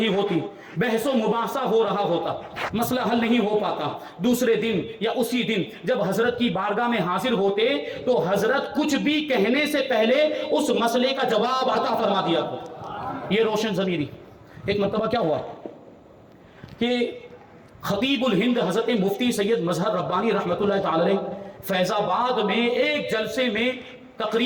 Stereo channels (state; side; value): identical; both; correlation 1.00